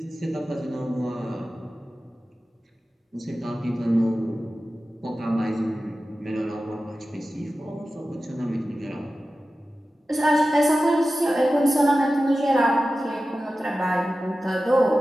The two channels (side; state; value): both; normal; correlation 0.94